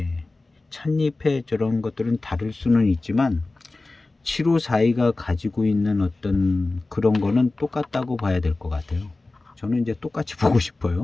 찻잎의 저런 것들은 다를 수는 있지만 7542가 가지고 있는 어떤 그런 거는 똑같다고 봐야 될 것 같아요. 저는 이제 똑같이 보고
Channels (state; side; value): quieter; right; 3.2 dB